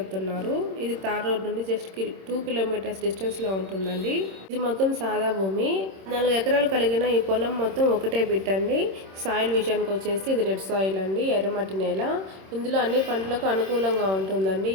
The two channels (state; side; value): late; left; 26 ms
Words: ఇది తార్ రోడ్ నుండి జస్ట్ 2 కిలోమీటర్స్ డిస్టెన్స్లో ఉంటుందండి. ఇది మొత్తం సాదా భూమి. 4 ఎకరాలు కలిగిన ఈ పొలం మొత్తం ఒకటే బిట్ అండి. సాయిల్ విషయానికి వచ్చేసి ఇది రెడ్ సాయిల్ అండి, ఎర్రమట్టి నేల. ఇందులో అన్ని పంటలకు అనుకూలంగా ఉంటుందండి